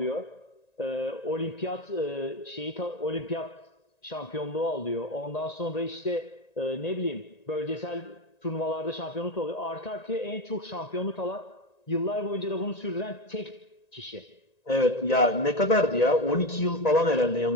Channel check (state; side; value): late; right; 1.9 ms